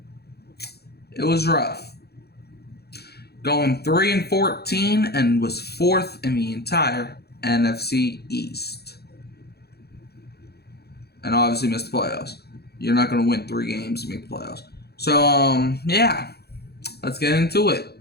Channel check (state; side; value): late; right; 0.47 ms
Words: it was rough. Going 3-14 and was fourth in the entire NFC East. And obviously missed the playoffs. You're not going to win 3 games to make the playoffs. So, yeah. Let's get into it.